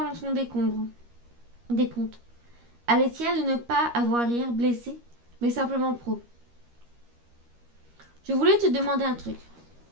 en son décompte, à l'essai de ne pas avoir l'air blessé, mais simplement pro. « Je voulais te demander un truc.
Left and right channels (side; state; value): left; late; 13 ms